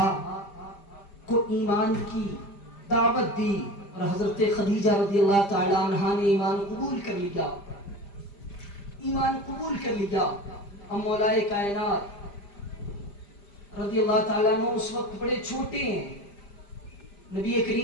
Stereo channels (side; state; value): right; late; 5.0 ms